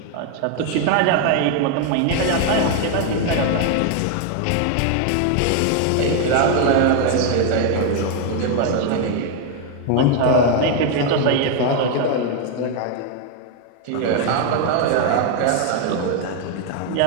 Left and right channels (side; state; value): both; different; correlation 0.01